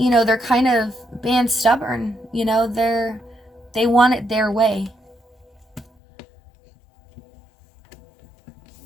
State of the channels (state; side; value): drops out; right; at 5.9 s